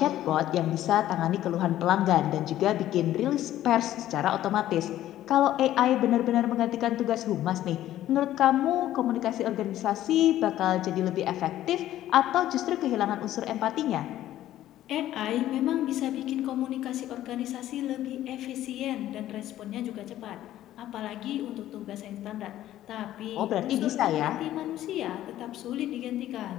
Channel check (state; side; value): quieter; right; 13.3 dB